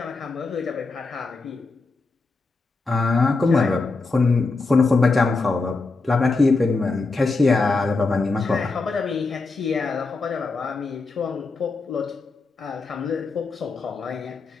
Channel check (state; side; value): quieter; right; 3.8 dB